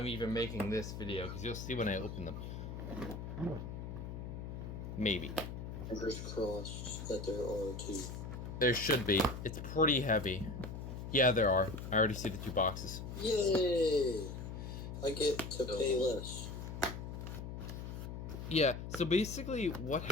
even making this video, because you'll see when I open them. Maybe. Fingers crossed that there are two. There should be. It's pretty heavy. Yeah, there are. I already see the two boxes. Yay! I get to pay less. Yeah, so basically what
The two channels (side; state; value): left; noise; hum, 7 dB below the sound